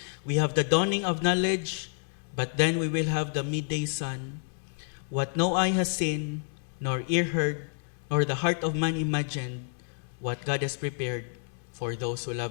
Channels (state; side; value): silent; right; 58 dB below the other